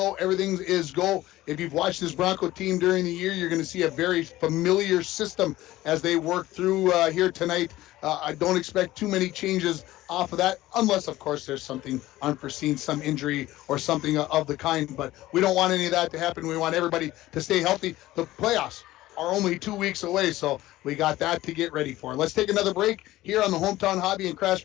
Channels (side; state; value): right; quieter; 16.4 dB